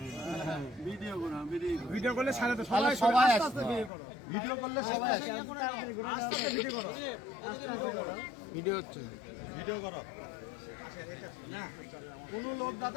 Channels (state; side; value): drops out; right; at 3.9 s